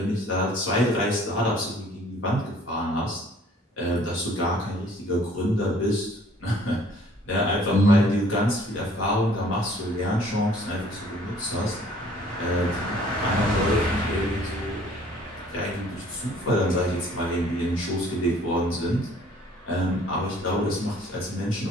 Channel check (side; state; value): both; normal; correlation 0.56